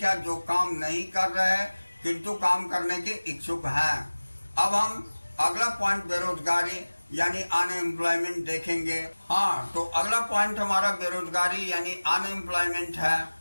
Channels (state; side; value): inverted; both; correlation -1.00